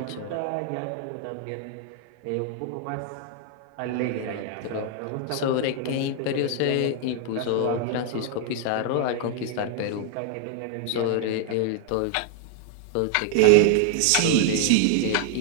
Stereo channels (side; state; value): both; different; correlation 0.00